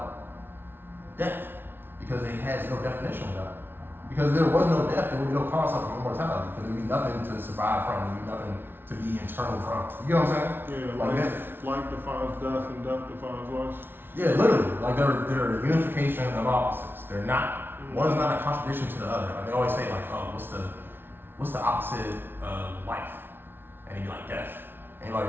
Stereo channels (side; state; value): left; late; 0.10 ms